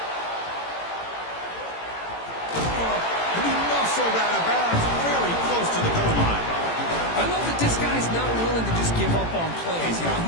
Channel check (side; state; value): right; late; 18 ms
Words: He muscled out of bounds, very close to the goal line. I love that this guy's not willing to just give up on plays. You know,